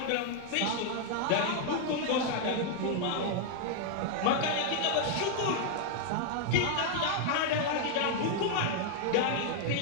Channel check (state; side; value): different; both; correlation 0.00